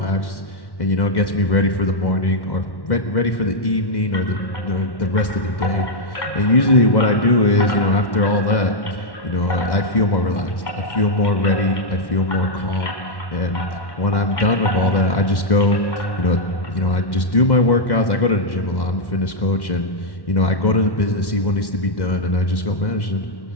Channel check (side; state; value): right; late; 1.1 ms